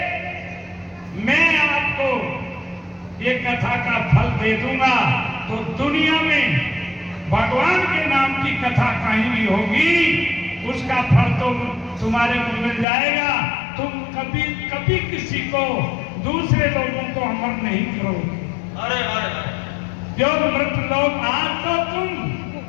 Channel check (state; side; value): drops out; right; at 12.9 s